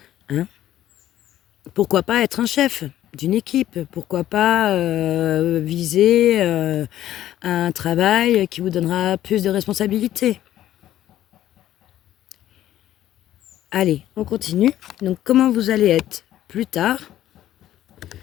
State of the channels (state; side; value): quieter; right; 12.8 dB